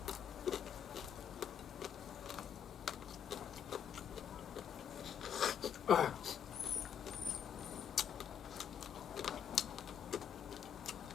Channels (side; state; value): right; quieter; 8.5 dB